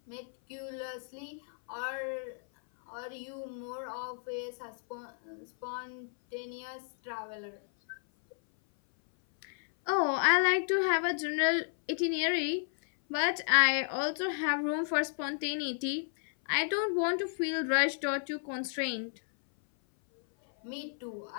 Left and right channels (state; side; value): silent; right; 56 dB below the other